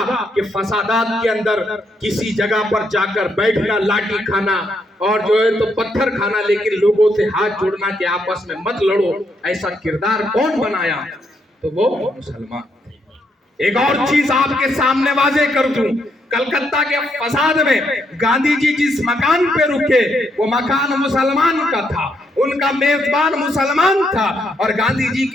کہ فسادات کے اندر کسی جگہ پر جا کر بیٹھنا، لاٹھی کھانا اور جو ہے تو پتھر کھانا، لیکن لوگوں سے ہاتھ جوڑنا کہ آپس میں مت لڑو، ایسا کردار کون بنایا؟ تو وہ مسلمان تھے۔ ایک اور چیز آپ کے سامنے واضح کر دوں، کلکتہ کے فساد میں گاندھی جی جس مکان پہ رکے وہ مکان مسلمان کا تھا، ان کا میزبان مسلمان تھا، اور گاندھی جی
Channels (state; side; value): normal; both; correlation 0.76